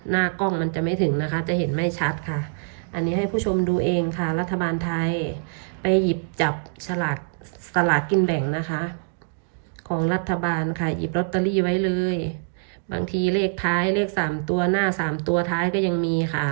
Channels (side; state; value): left; silent; digital silence